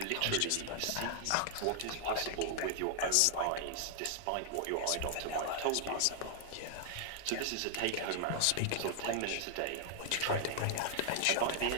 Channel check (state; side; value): different; both; correlation 0.00